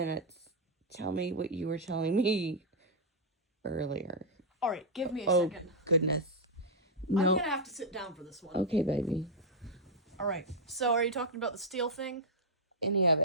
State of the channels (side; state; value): both; normal; correlation -0.04